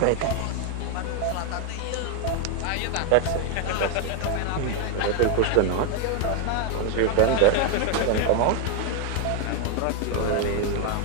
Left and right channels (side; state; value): both; different; correlation 0.01